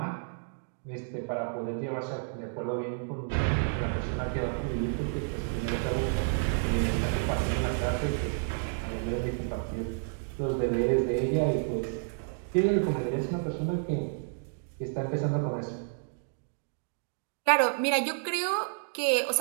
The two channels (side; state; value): left; silent; digital silence